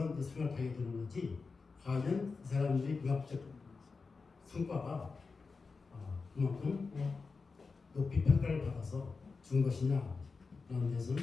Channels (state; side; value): quieter; right; 4.5 dB